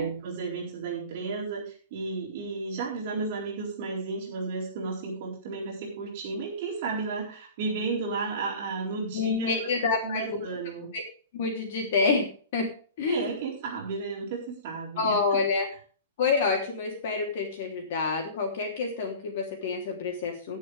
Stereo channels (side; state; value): both; inverted; correlation -0.39